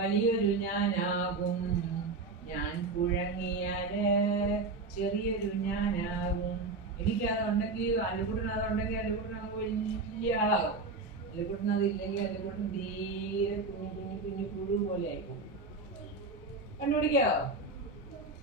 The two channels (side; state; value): left; quieter; 3.7 dB